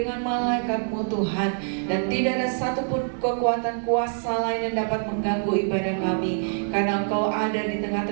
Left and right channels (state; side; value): silent; left; digital silence